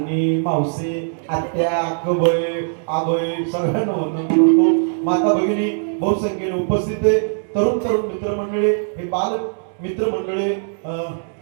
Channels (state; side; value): silent; left; 66 dB below the other